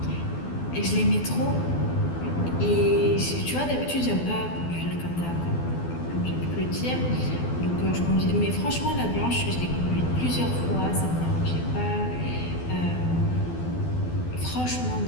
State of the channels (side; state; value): right; late; 12 ms